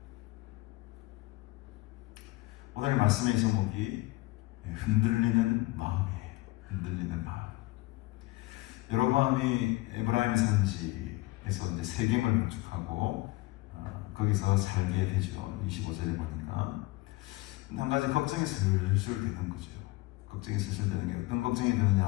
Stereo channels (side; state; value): right; quieter; 20.4 dB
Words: 오늘 말씀의 제목이 흔들리는 마음이에요. 흔들리는 마음. 여로보암이 에브라임 산지에서 이제 세겜을 건축하고 거기서 살게 되죠. 25절에 보니까 한 가지 걱정이 슬슬 되는 거죠. 걱정이 슬슬 되는 게 어떤 걱정이